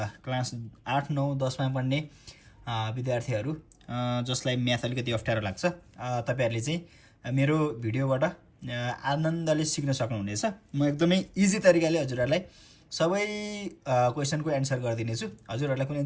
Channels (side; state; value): both; identical; correlation 1.00